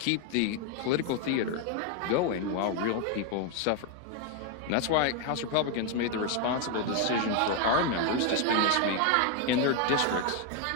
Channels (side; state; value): both; different; correlation 0.01